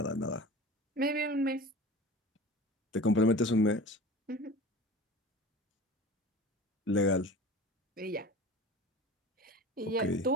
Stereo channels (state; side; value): normal; both; correlation 0.37